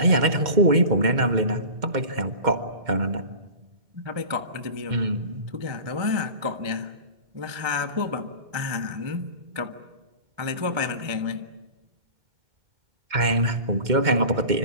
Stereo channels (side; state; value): left; late; 2.1 ms